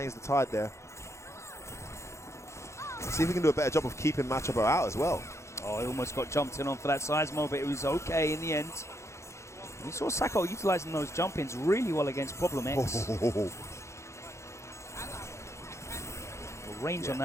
the tide there. Let's see if we can do a better job of keeping Machabo out as well. Oh, he almost got jumped in on for that Seismo, but it was okay in the end. We saw Sako utilizing those jump-ins really well against Problem X. The range on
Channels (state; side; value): late; right; 0.14 ms